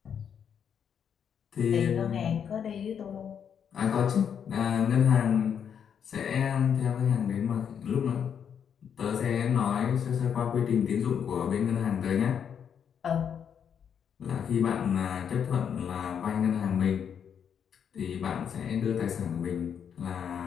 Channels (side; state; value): right; quieter; 7.9 dB